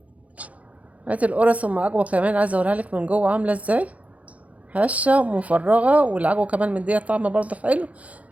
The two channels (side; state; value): left; late; 0.068 ms